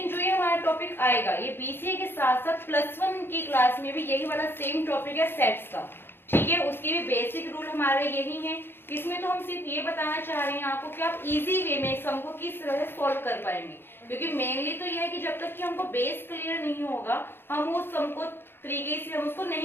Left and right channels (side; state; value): right; late; 0.10 ms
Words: जो ये हमारा टॉपिक आएगा ये बीसीए के साथ साथ +1 की क्लास में भी यही वाला सेम टॉपिक है सेट्स का, ठीक है। उसके भी बेसिक रूल हमारे यही है। इसमें तो हम सिर्फ ये बताना चाह रहे हैं आपको कि आप इजी वे में सम को किस तरह से सॉल्व कर पाएंगे, क्योंकि मेनली तो यह है कि जब तक कि हमको बेस क्लियर नहीं होगा हम उस सम को तरीके से हम उसको